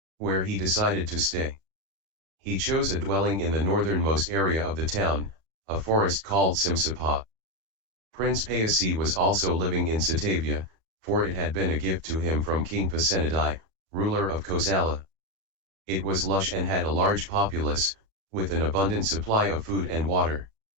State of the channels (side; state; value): left; late; 37 ms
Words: where he decided to stay. He chose a dwelling in the northernmost area of the town, a forest called Simsapa. Prince Payasi was also living in Satavia, for it had been a gift to him from King Pasenadi, ruler of Kosala. It was lush and had a large populace, with an abundant supply of food and water.